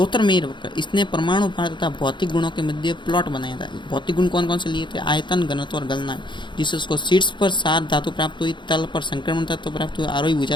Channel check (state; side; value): late; right; 0.23 ms